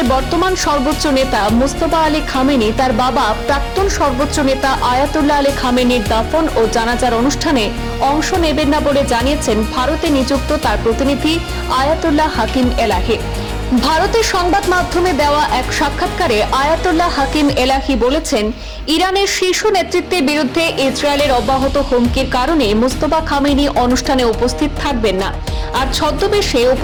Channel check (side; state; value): both; identical; correlation 1.00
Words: বর্তমান সর্বোচ্চ নেতা মোস্তফা আলী খামেনি তার বাবা প্রাক্তন সর্বোচ্চ নেতা আয়াতুল্লাহ আলী খামেনির দাফন ও জানাজার অনুষ্ঠানে অংশ নেবেন না বলে জানিয়েছেন ভারতে নিযুক্ত তার প্রতিনিধি আয়াতুল্লাহ হাকিম এলাহি। ভারতের সংবাদ মাধ্যমে দেওয়া এক সাক্ষাৎকারে আয়াতুল্লাহ হাকিম এলাহি বলেছেন, ইরানের শীর্ষ নেতৃত্বের বিরুদ্ধে ইসরায়েলের অব্যাহত হুমকির কারণে মোস্তফা খামেনি অনুষ্ঠানে উপস্থিত থাকবেন না। আর ছদ্মবেশে